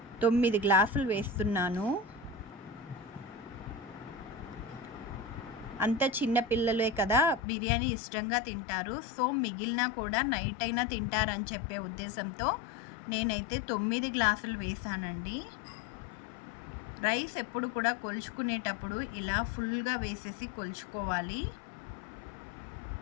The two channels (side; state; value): right; drops out; at 7.4 s